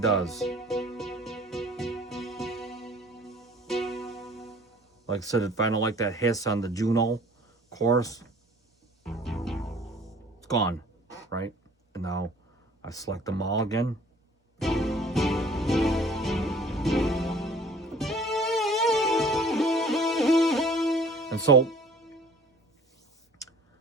does. Like I said, if I don't like that hiss on the Juno chorus, it's gone, right? And now I select them all again. And so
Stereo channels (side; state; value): both; normal; correlation 0.52